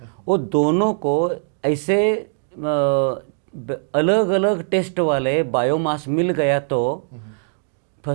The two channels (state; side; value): silent; left; digital silence